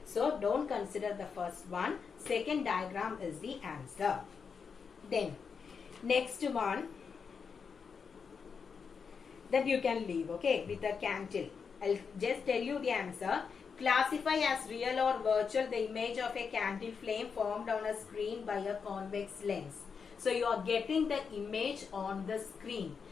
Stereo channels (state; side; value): quieter; right; 5.9 dB